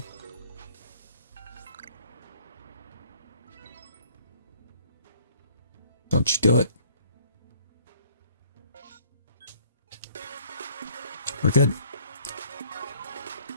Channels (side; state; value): both; inverted; correlation -0.59